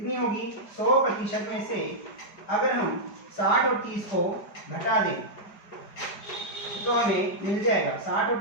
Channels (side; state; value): right; late; 4.9 ms